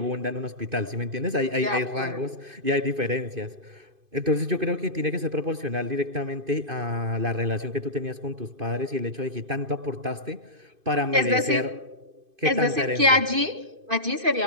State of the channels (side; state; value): left; late; 2.5 ms